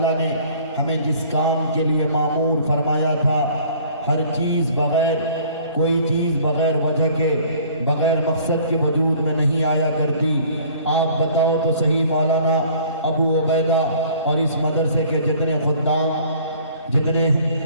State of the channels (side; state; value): both; inverted; correlation -0.52